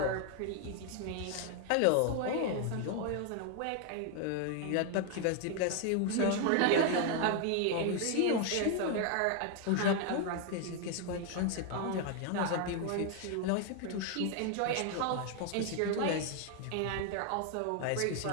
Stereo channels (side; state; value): both; different; correlation 0.00